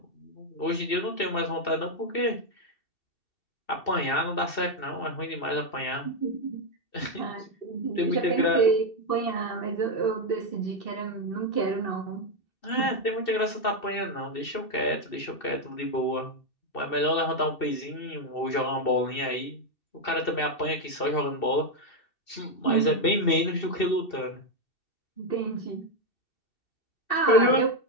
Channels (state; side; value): late; right; 2.7 ms